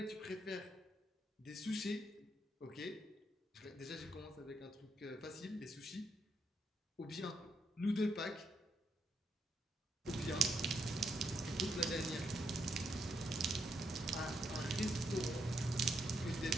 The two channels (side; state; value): both; normal; correlation 0.77